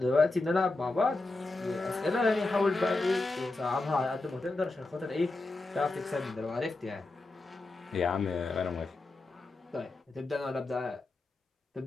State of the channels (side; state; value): right; quieter; 3.2 dB